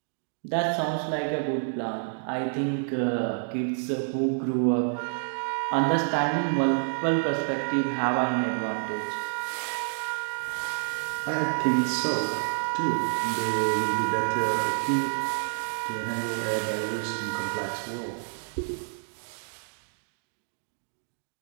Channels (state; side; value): silent; left; digital silence